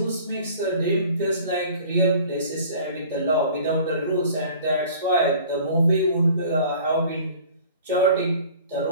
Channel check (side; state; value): both; inverted; correlation -0.48